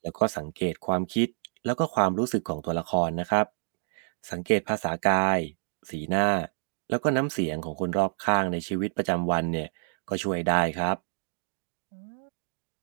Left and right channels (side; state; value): left; silent; 59 dB below the other